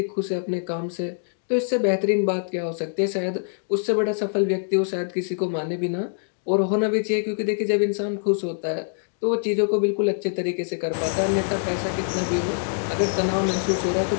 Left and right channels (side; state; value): right; silent; digital silence